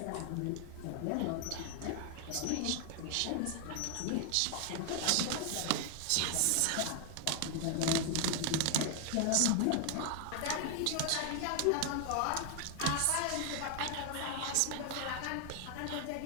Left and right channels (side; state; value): both; different; correlation 0.00